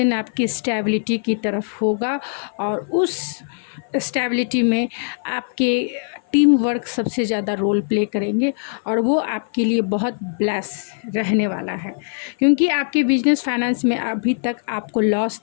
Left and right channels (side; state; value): right; silent; 56 dB below the other